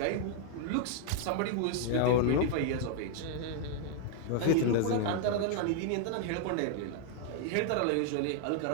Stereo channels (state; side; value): different; both; correlation 0.00